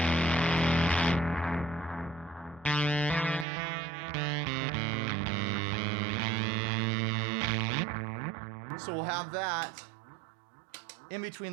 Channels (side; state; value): left; drops out; at 3.5 s